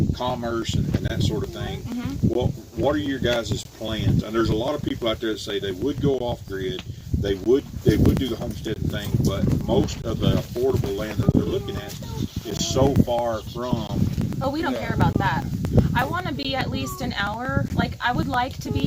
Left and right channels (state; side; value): identical; both; correlation 1.00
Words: commerce and that sort of thing. What are your guys' plans? And there's a lot of people out there that say they would go off grid. They would do the homesteading thing, but most of the affordable land that they're looking at is so far from. Oh, we don't care about that. I want to be at least an hour. Like, I would like to